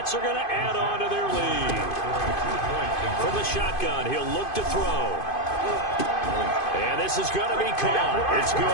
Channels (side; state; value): right; late; 2.5 ms